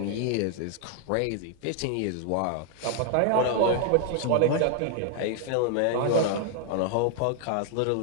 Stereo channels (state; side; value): different; both; correlation 0.00